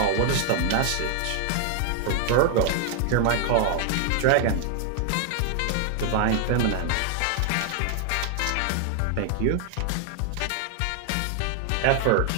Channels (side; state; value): both; different; correlation 0.00